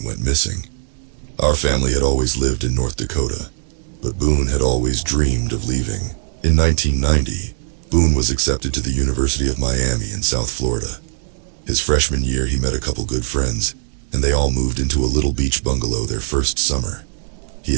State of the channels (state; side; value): silent; left; digital silence